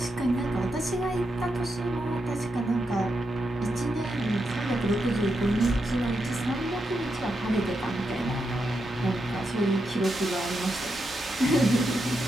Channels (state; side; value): normal; both; correlation 0.84